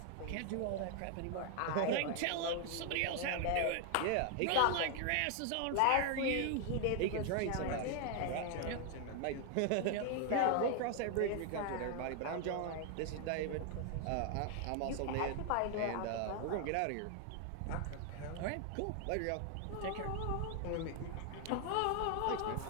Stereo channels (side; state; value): both; different; correlation 0.00